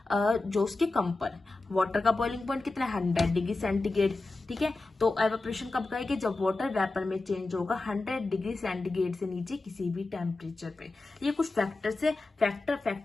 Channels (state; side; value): quieter; right; 3.3 dB